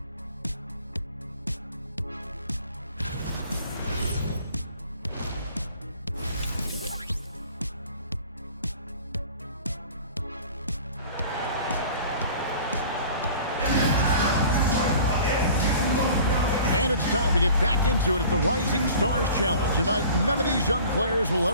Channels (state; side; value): inverted; both; correlation -0.46